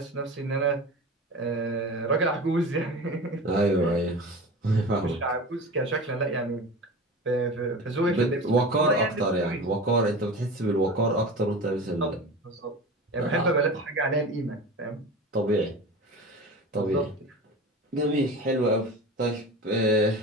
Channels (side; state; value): both; normal; correlation 0.32